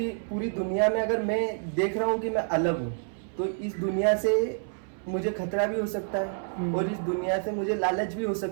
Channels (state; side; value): silent; left; 59 dB below the other